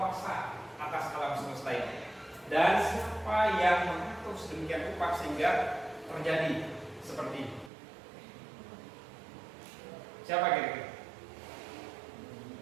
atas alam semesta ini dan siapa yang mengatur sedemikian rupa sehingga terjadi seperti ini. Siapa kira-kira?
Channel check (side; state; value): left; drops out; at 7.7 s